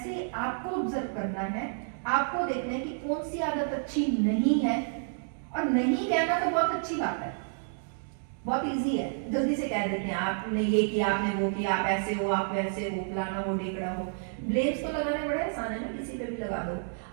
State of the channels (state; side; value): silent; left; digital silence